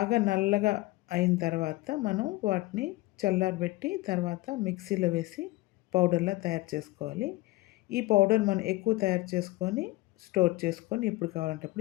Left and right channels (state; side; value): quieter; right; 19.7 dB